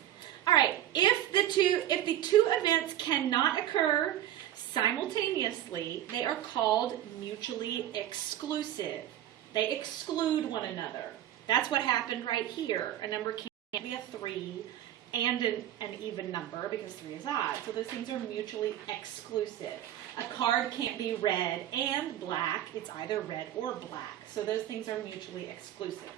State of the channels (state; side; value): quieter; left; 12.3 dB